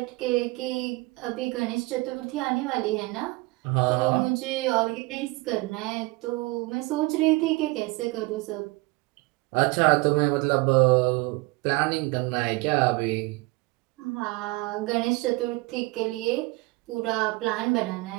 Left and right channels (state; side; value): quieter; left; 23.6 dB